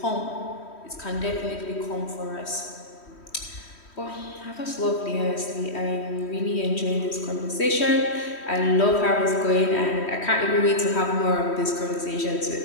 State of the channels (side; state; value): right; late; 3.1 ms